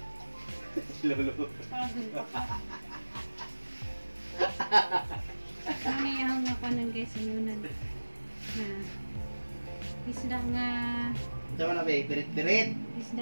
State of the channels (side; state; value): both; inverted; correlation -1.00